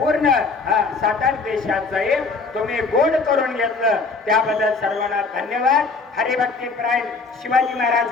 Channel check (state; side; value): quieter; right; 4.2 dB